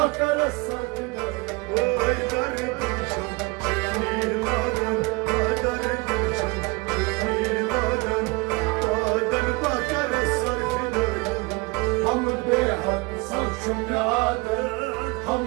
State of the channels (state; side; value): quieter; left; 26.9 dB